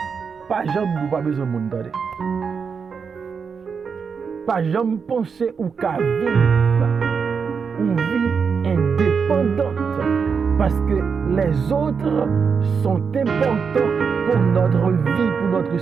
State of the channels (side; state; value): left; quieter; 5.9 dB